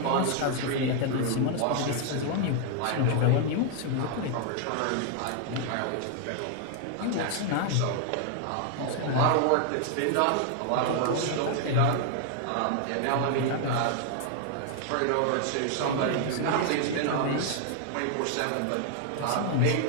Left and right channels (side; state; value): both; different; correlation 0.00